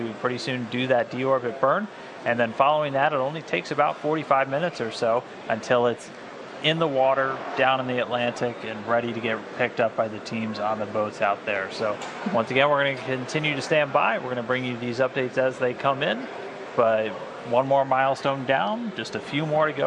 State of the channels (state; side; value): identical; both; correlation 1.00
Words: pretty soon do that deorbit burn. And then following that, it only takes about 45 minutes or so until it's in the water, down in the Atlantic, and ready to get picked up by the teams on the boats out there. So once again, we're going to continue to stand by. We're going to bring you these updates as they come in. But one more milestone down, just a few more to